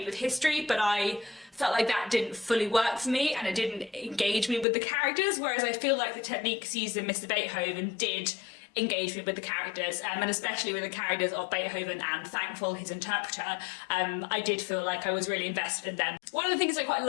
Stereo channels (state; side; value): drops out; right; at 4.7 s